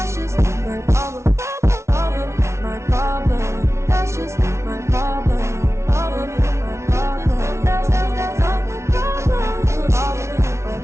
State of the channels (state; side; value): late; left; 0.13 ms